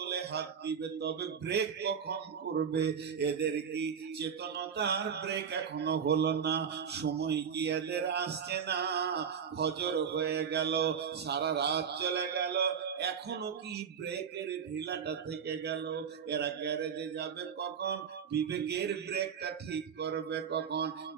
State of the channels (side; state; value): left; quieter; 7.2 dB